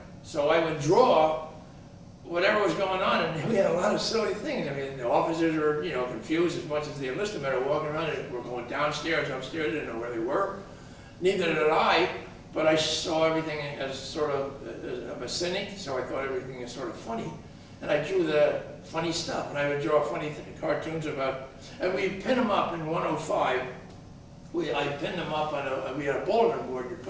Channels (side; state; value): both; identical; correlation 1.00